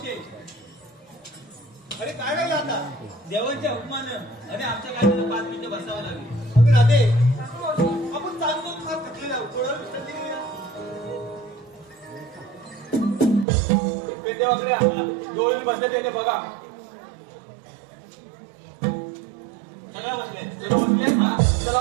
अरे काय वेळ आता देवांच्या हुकमानं आणि आमच्या कायद्यानं 5 मिनिटं बसावं लागेल. अगं राधे आपण चालतो फार थकलेला आहोत. थोडा विश्रांती घेऊया. पेंदेवाकडे डोळे बसले त्याने बघा सगळं बसले चला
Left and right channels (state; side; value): drops out; left; at 13.5 s